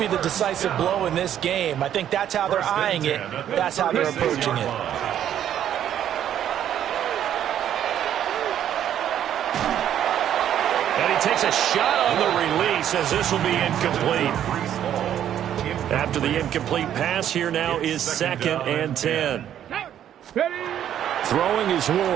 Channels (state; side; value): quieter; left; 10.5 dB